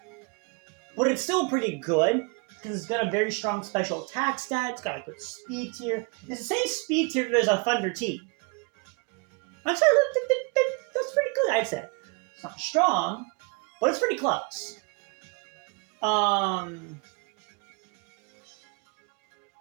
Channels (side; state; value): left; quieter; 31.2 dB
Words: but it's still pretty good because it's got a very strong special attack stat. It's got a good speed tier. It's the same speed tier as a Thunder T. That's pretty good, I'd say. It's not strong, but it's pretty close.